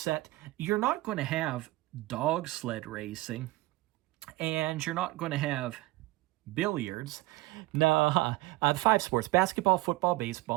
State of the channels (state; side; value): quieter; left; 19.8 dB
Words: you're not going to have dog sled racing, and you're not going to have billiards. No, the 5 sports: basketball, football,